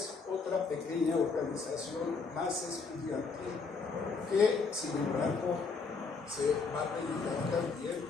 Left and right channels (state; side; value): quieter; right; 4.7 dB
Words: otra pequeña organización más estudiantil que, sin embargo, se va a dedicar también